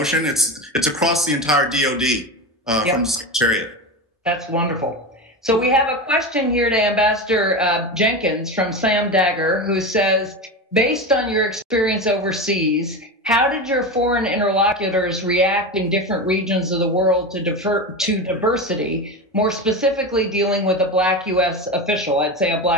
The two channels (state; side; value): normal; both; correlation 0.22